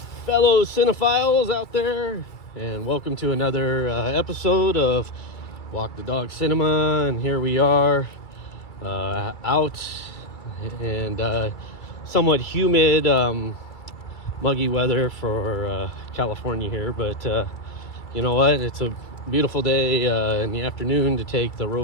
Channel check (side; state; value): right; late; 2.3 ms